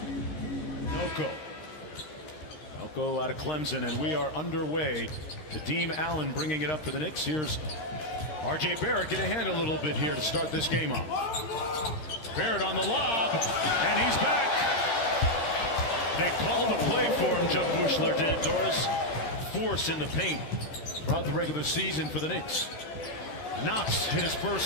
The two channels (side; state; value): right; late; 13 ms